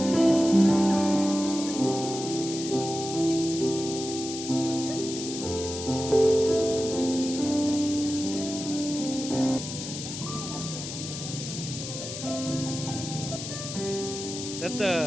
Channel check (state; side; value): noise; left; hiss, 8 dB below the sound